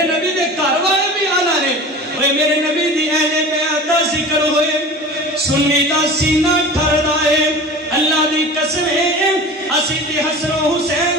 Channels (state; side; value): normal; both; correlation 0.36